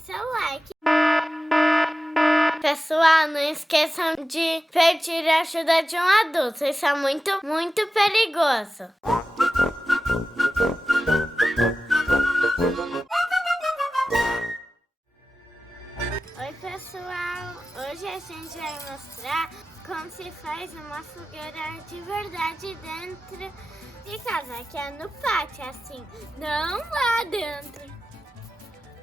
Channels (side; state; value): both; normal; correlation 0.94